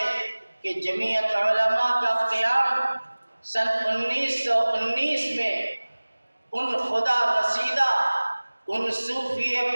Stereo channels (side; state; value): both; inverted; correlation -1.00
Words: کہ جمعیت علماء کا قیام سن 1919 میں ان خدا رسیدہ، ان صوفی